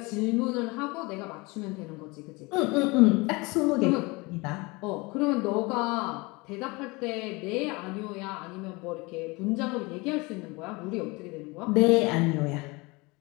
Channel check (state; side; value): quieter; right; 25.2 dB